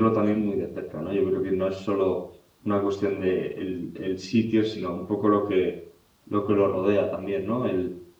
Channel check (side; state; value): both; identical; correlation 1.00